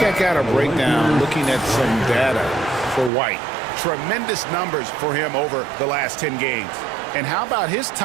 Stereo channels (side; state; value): left; drops out; at 3.1 s